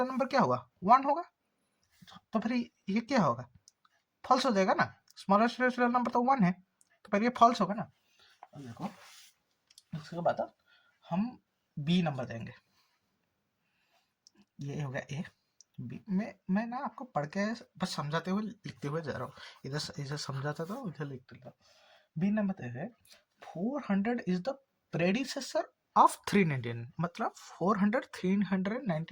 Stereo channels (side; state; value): both; identical; correlation 1.00